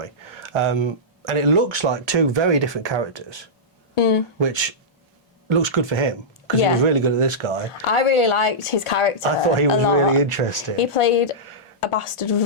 And it looks like two very different characters, which looks good for him because he was really good at this guy. I really liked his character. I thought he was a lot. really interesting. He played a bastard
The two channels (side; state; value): both; normal; correlation -0.13